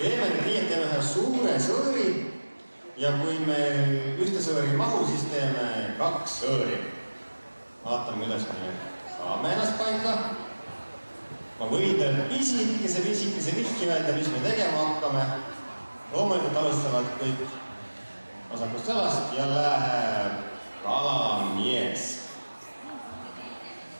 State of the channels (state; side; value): inverted; both; correlation -1.00